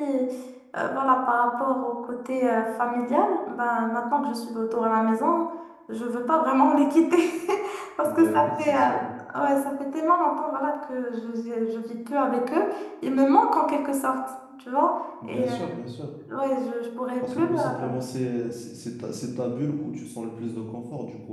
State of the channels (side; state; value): both; identical; correlation 1.00